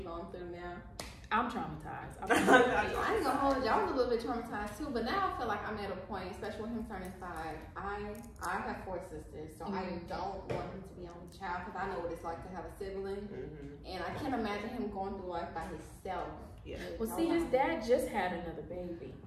through now? I'm traumatized. I ain't gonna hold you. I was a little bit traumatized too, but now I feel like I'm at a point, especially with him turning 5. I have 4 sisters, so I don't want him to be only child because I know what it's like to have a sibling, and I can't imagine him going through life by himself. Well, see, his dad just had another baby,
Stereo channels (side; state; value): both; identical; correlation 1.00